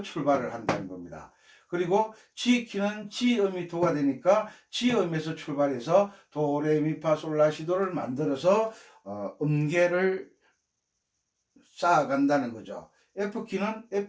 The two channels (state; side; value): identical; both; correlation 1.00